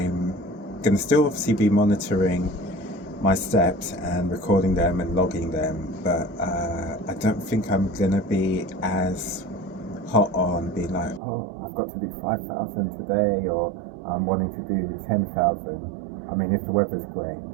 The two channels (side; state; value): left; drops out; at 11.2 s